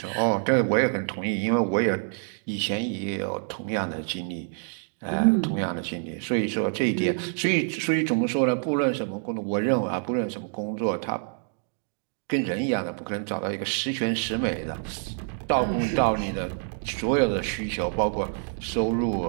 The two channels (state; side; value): silent; left; 59 dB below the other